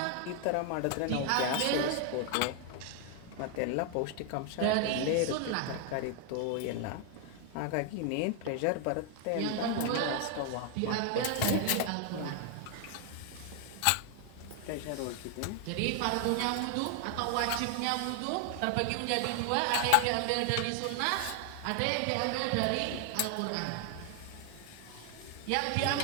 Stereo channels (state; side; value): different; both; correlation 0.00